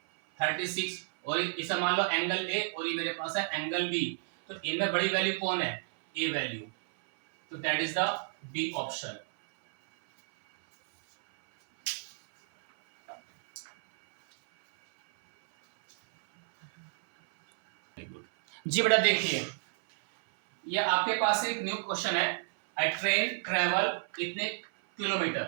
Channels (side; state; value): left; silent; 57 dB below the other